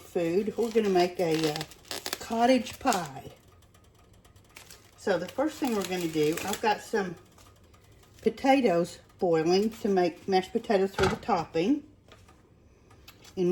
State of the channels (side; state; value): both; identical; correlation 1.00